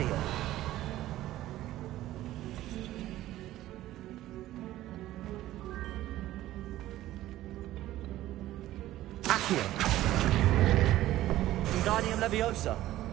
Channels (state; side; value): quieter; left; 14.8 dB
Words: Accio! Wingardium Leviosa!